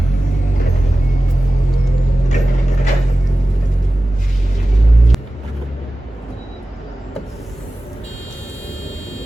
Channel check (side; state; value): both; normal; correlation 0.95